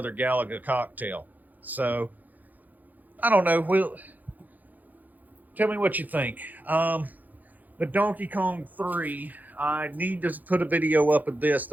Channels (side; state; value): left; late; 0.082 ms